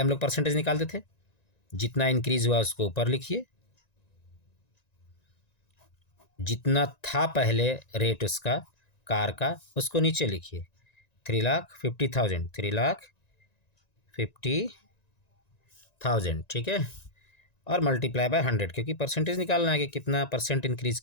हम लोग परसेंटेज निकालते थे, जितना इंक्रीज हुआ उसको ऊपर लिखिए, जितना था पहले रेट उसका कार का उसको नीचे लिखिए, 3,50,000, 3,50,000। ठीक है, और मल्टीप्लाई बाय 100, क्योंकि परसेंटेज निकालना है कि कितना परसेंट इंक्रीज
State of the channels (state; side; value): late; right; 1.9 ms